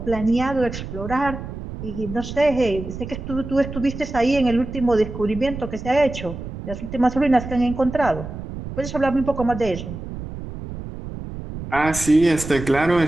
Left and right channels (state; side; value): noise; right; rumble, 9 dB below the sound